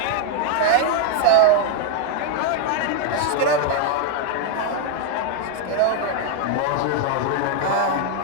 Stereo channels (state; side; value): different; both; correlation 0.00